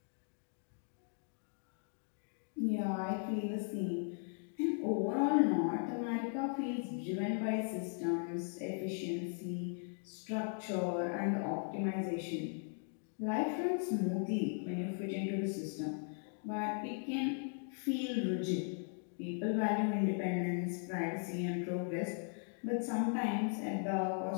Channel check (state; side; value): silent; right; 52 dB below the other